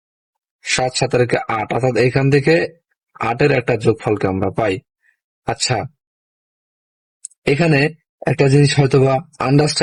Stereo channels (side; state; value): both; identical; correlation 1.00